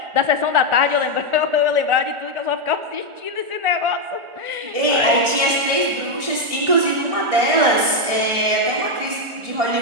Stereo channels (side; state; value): left; late; 1.4 ms